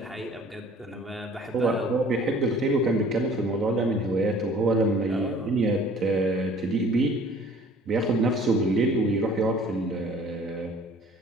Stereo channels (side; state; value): both; normal; correlation 0.51